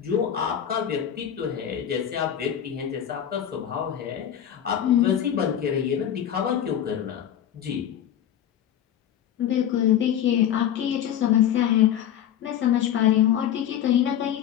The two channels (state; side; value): quieter; right; 10.2 dB